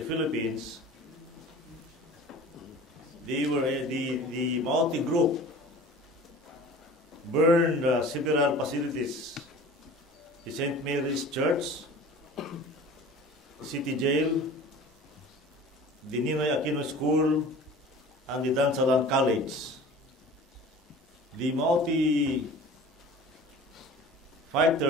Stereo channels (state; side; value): normal; both; correlation 0.41